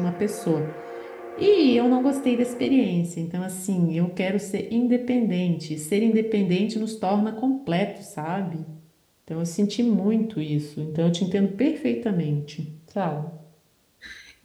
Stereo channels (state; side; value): identical; both; correlation 1.00